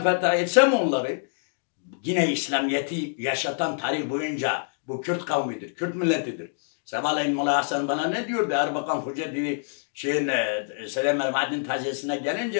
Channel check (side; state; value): right; silent; digital silence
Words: fetha etsem onları yine İslamiyet'i yaşatan tarih boyunca bu Kürt kavmidir, Kürt milletidir. Sabahleyin Molla Hasan bana ne diyordu? Erbakan Hoca dedi, Selam el-Madin taziyesine